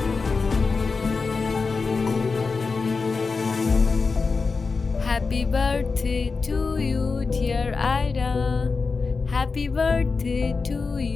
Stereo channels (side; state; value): right; quieter; 4.5 dB